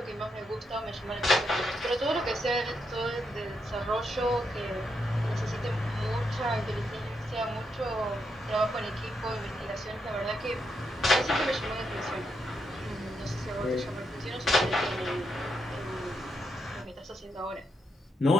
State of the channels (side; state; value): both; normal; correlation 0.81